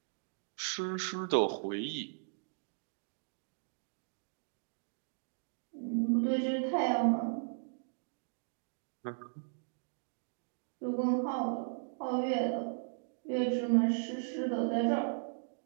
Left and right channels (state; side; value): silent; left; digital silence